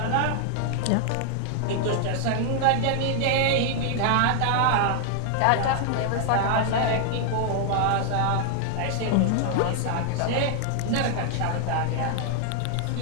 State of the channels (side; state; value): both; different; correlation 0.00